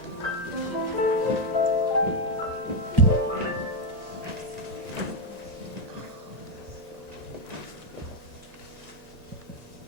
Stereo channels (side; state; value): left; late; 1.9 ms